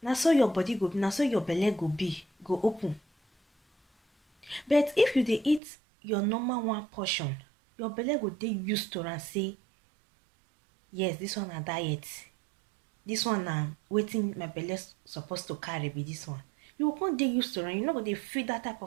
na so your body go be, na so your belle go open. But if you dey eat your normal 1 portion, your belle go dey used to am say, yes, this one na diet, this one na wetin my belle supposed to carry be this one. You go come dey used to am. You no go dey feel that type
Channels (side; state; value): left; drops out; at 5.6 s